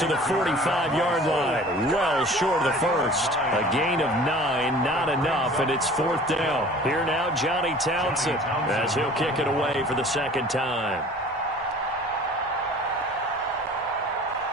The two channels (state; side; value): normal; both; correlation 0.46